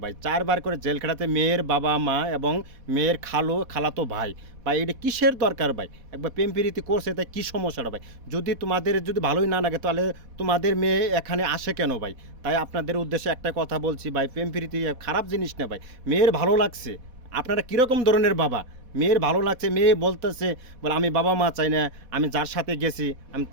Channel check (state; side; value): late; left; 4.1 ms